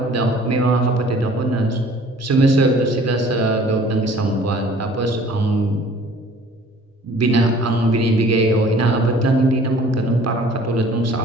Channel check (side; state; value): both; normal; correlation 0.51